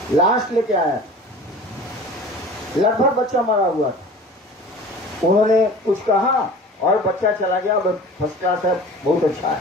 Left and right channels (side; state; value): both; normal; correlation 0.41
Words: लाश लेके आया, लगभग बच्चा मरा हुआ था। उन्होंने कुछ कहा और बच्चा चला गया, फर्स्ट क्लास है, बहुत अच्छा